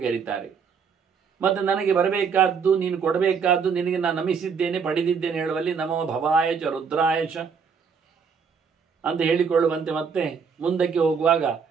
ಕರೀತಾರೆ. ಮತ್ತು ನನಗೆ ಬರಬೇಕಾದ್ದು, ನೀನು ಕೊಡಬೇಕಾದ್ದು, ನಿನಗೆ ನಾನು ನಮಿಸಿದ್ದೇನೆ, ಪಡೆದಿದ್ದೇನೆ ಹೇಳುವಲ್ಲಿ ನಮೋ ಭವಾಯ ಚ ರುದ್ರಾಯ ಚ ಅಂತ ಹೇಳಿಕೊಳ್ಳುವಂತೆ, ಮತ್ತೆ ಮುಂದಕ್ಕೆ ಹೋಗುವಾಗ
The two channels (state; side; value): quieter; left; 6.1 dB